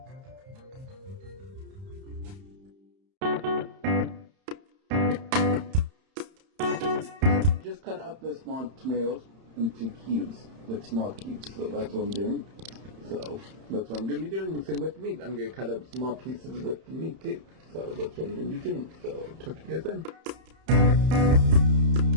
Just cut up the small tomatoes into cubes, like small cubes. So that's what I'm doing. So that's what I'm going to be doing. The same with meat. I'm going to cut up small pieces with meat too. So that's what I'm going to be doing. So talk to you guys then.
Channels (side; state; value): left; late; 31 ms